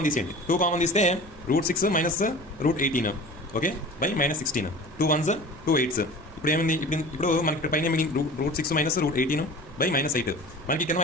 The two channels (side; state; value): both; normal; correlation 0.39